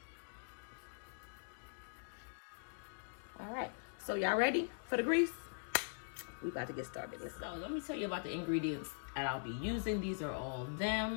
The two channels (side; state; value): right; silent; digital silence